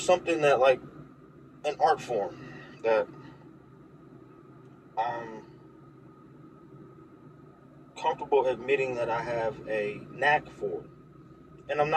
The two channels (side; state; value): both; identical; correlation 1.00